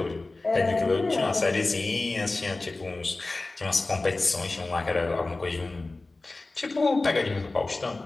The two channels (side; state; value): right; quieter; 3.2 dB